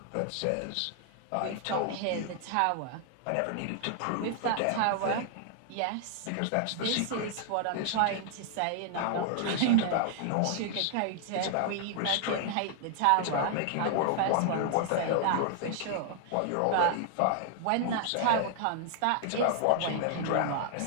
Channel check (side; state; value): both; different; correlation 0.00